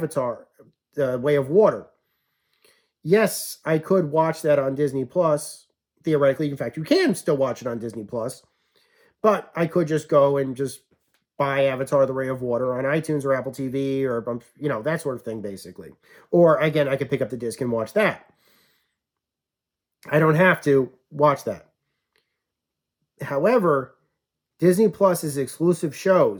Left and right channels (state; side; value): identical; both; correlation 1.00